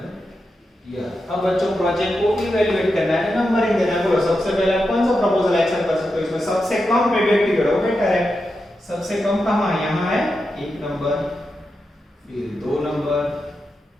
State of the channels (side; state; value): both; normal; correlation 0.88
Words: ईयर। अब बच्चों प्रोजेक्ट को इवैल्यूएट करना है, नंबरिंग देना है। बोलो सबसे पहले आप कौन सा प्रपोजल एक्शन कर सकते हो? इसमें सबसे कम पेबैक पीरियड हो, बेटर है। सबसे कम कहां है? यहां है 1 नंबर, फिर 2 नंबर,